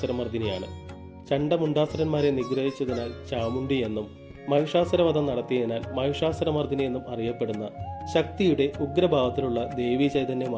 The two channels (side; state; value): both; identical; correlation 1.00